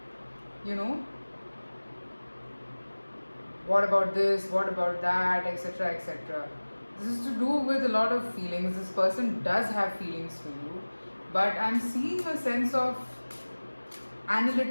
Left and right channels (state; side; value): inverted; both; correlation -1.00